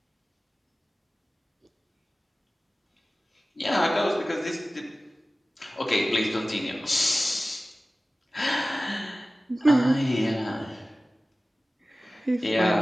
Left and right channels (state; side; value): normal; both; correlation 0.97